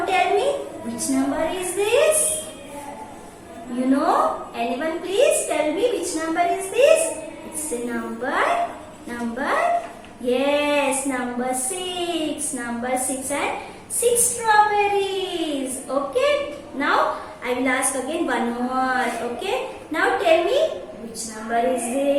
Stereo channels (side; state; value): both; identical; correlation 1.00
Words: tell me, which number is this? You know? Anyone please tell me which number is this? It's a number. Yes, number 6. Number 6 and 6 strawberries. Okay? Now I will ask again one more. Okay? Now tell me which number is